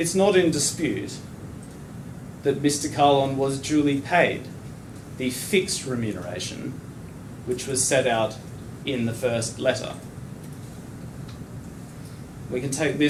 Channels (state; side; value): identical; both; correlation 1.00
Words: not in dispute that Mr. Kahlon was duly paid the fixed remuneration which was set out in the first letter. We can take